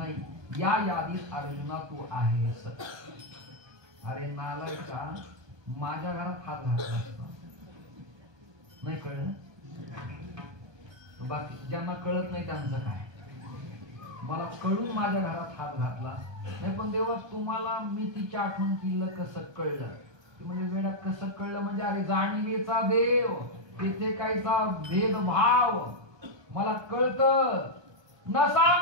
या यादीत अर्जुना तू आहेस. अरे नालायका, माझ्या घरात हात घातला असता, नाही कळलं. बाकी ज्यांना कळत नाही त्यांचं काय. मला कळून माझ्या घरात हात घातला नाही, पण देवा तुम्हाला मी तिची आठवण केलं कसं कळलं. म्हणजे वेळात कसं कळलं म्हणजे अरे जाणीवेचा देव, तिथे काहीचा भेदभाव मला कळतं. न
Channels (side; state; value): left; late; 1.2 ms